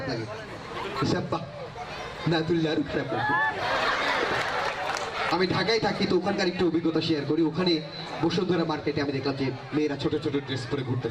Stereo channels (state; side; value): identical; both; correlation 1.00